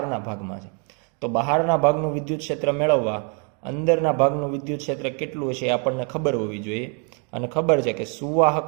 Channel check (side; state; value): left; quieter; 37.9 dB